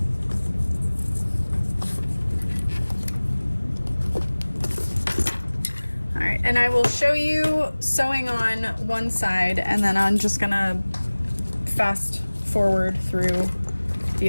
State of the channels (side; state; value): both; inverted; correlation -1.00